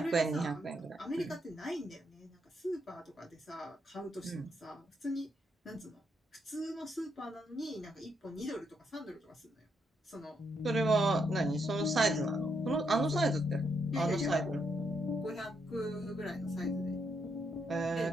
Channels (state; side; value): normal; both; correlation 0.77